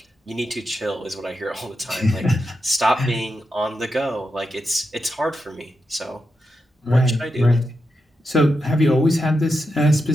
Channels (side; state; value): both; normal; correlation 0.87